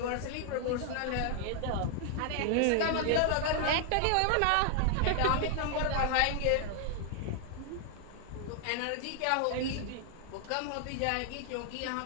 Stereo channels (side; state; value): both; different; correlation 0.00